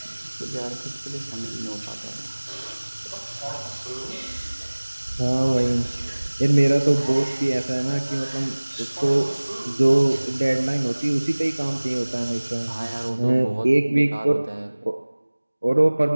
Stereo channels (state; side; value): inverted; both; correlation -1.00